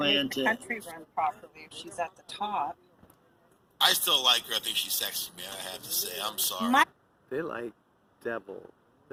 to make the country run properly if she's at the top. I still like her. I think she's sexy, man. I have to say. I'm sorry. They like devil.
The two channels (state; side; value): identical; both; correlation 1.00